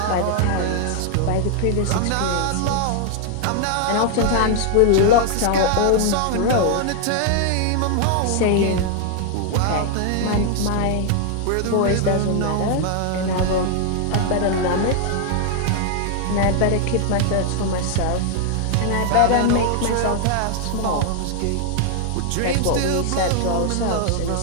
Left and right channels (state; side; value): different; both; correlation 0.00